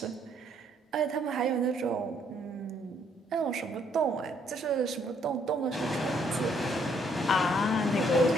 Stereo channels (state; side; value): normal; both; correlation 0.68